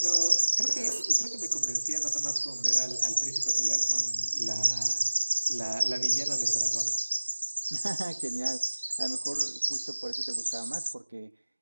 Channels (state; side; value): inverted; both; correlation -1.00